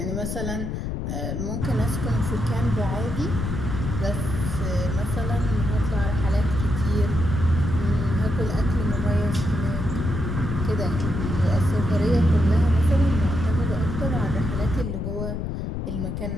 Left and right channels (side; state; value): left; noise; rumble, 3 dB below the sound